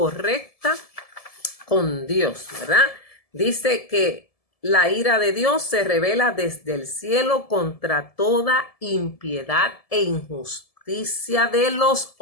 con Dios, ¿verdad? Dice que la ira de Dios se revela desde el cielo contra toda impiedad e injusticia de los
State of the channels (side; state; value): right; late; 1.7 ms